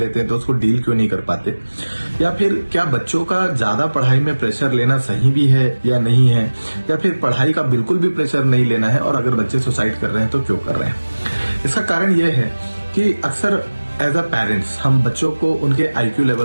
हैं तो उसको डील क्यों नहीं कर पाते, या फिर क्या बच्चों का ज्यादा पढ़ाई में प्रेशर लेना सही भी है या नहीं है, या फिर पढ़ाई का बिल्कुल भी प्रेशर नहीं लेना है और अगर बच्चे सुसाइड कर रहे हैं तो क्यों कर रहे हैं। इसका कारण यह है कि अक्सर एज अ पेरेंट्स हम बच्चों को उनके IQ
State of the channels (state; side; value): inverted; both; correlation -1.00